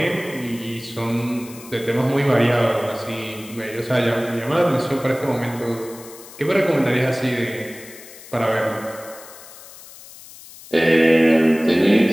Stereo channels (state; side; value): noise; left; hiss, 18 dB below the sound